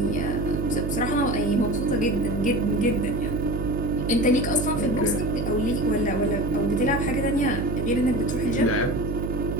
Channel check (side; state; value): right; noise; hum, 3 dB below the sound